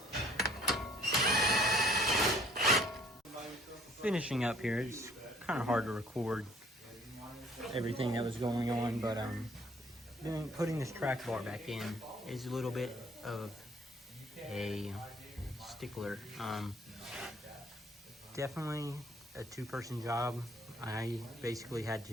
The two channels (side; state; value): both; normal; correlation 0.58